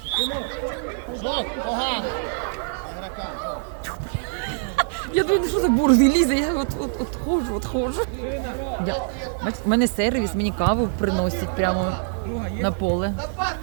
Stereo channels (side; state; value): left; silent; 60 dB below the other